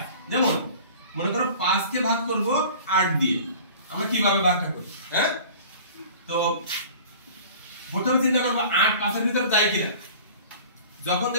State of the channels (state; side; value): inverted; both; correlation -0.43